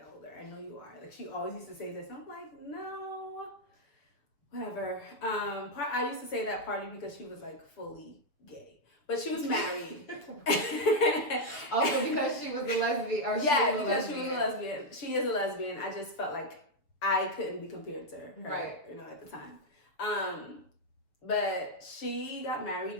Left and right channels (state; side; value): late; right; 6.6 ms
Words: older. I know you are. Like, she always used to say this. And I'm like, no, whatever. I used to say that partly because she was, like, fully gay. But she was married. Also because she was a lesbian? Or because she was a lesbian. She is a lesbian. I just felt like I couldn't be compared to her, right? At the time. But she got